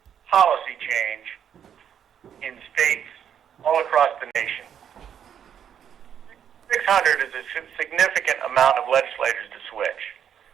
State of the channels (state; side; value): quieter; left; 8.8 dB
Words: policy change in states all across the nation. 600 is a significant amount of legislators to switch.